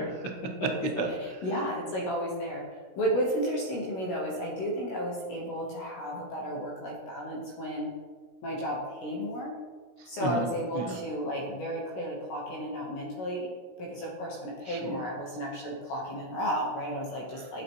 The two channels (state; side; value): late; right; 16 ms